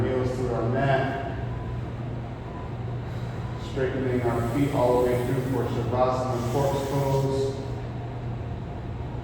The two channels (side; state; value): both; identical; correlation 1.00